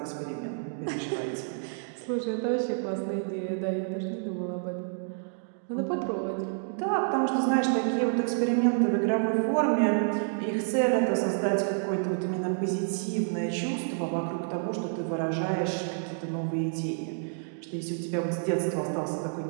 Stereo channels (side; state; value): left; silent; digital silence